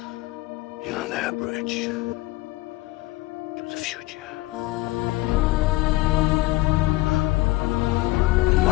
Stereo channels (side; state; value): right; quieter; 19.0 dB